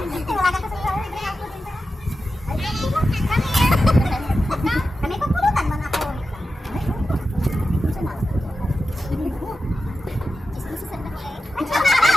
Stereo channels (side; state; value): both; normal; correlation 0.92